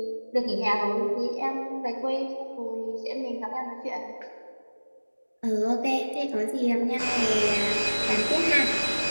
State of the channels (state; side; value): inverted; both; correlation -1.00